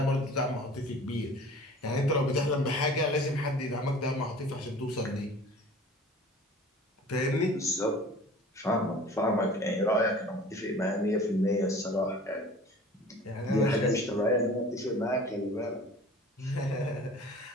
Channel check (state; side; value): normal; both; correlation 0.44